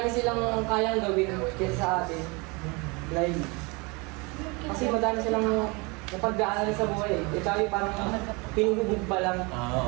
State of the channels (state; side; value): quieter; left; 28.1 dB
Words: silang kayang gawin kaysa sa atin. Like, kasi madami silang napag-aaral sa buhay. Tayo parang pinububog pa lang.